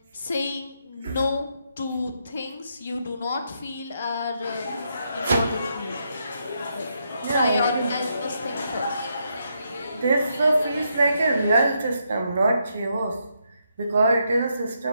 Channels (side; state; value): both; inverted; correlation -0.79